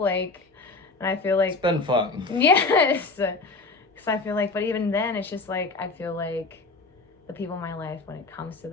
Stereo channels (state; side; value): quieter; right; 3.7 dB